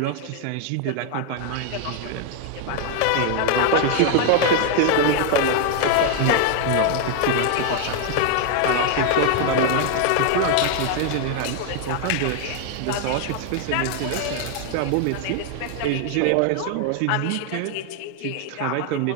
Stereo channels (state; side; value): different; both; correlation 0.01